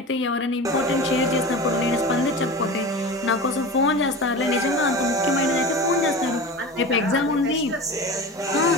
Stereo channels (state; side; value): normal; both; correlation 0.31